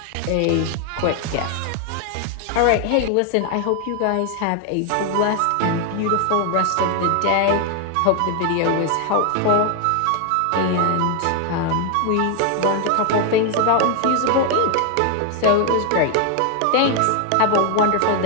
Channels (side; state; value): both; different; correlation 0.01